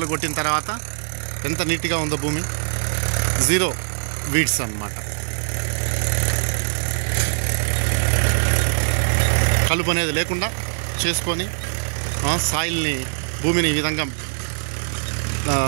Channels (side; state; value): left; silent; 64 dB below the other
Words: కొట్టిన తర్వాత ఎంత నీట్గా ఉందో భూమి. 0 వీడ్స్ అన్నమాట. కలుపు అనేది లేకుండా చేసుకొని సాయిల్ని, భూమిని ఈ విధంగా